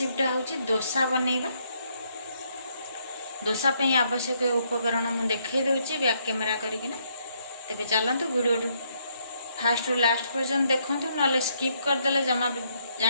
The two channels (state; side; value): inverted; both; correlation -0.72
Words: हूँ डोसा बनैबा। डोसा पे आवश्यक उपकरण मुझे देखई दूची बैक कैमेरा करकिना। तेरे चलतु वीडियो फास्ट रु लास्ट पर्यंत देखूँ ना स्किप करदे जमा